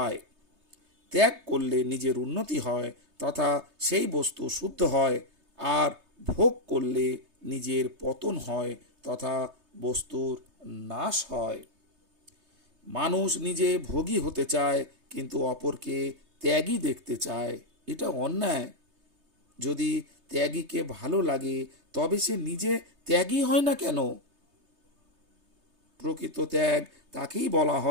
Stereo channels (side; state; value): left; late; 3.3 ms